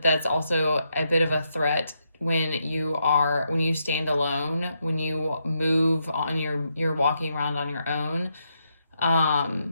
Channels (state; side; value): inverted; both; correlation -0.80